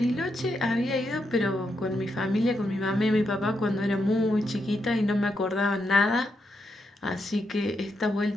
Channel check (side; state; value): both; normal; correlation 0.82